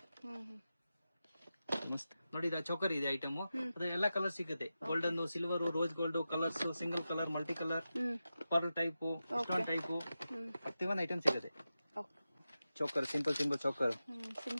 ನೋಡಿ ಇದು ಚೌಕರ್ ಇದೆ ಐಟಮ್. ಅದ್ರ ಎಲ್ಲ ಕಲರ್ ಸಿಗುತ್ತೆ. Golden, silver, rose gold, colours, single colour, multi colour, pearl type, stone type, 31 item ಸಿಗುತ್ತೆ. ಚೌಕರ್, ಸಿಂಪಲ್ ಚೌಕರ್,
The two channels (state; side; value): inverted; both; correlation -0.92